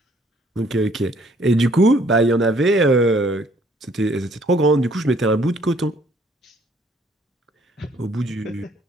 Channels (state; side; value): normal; both; correlation 0.62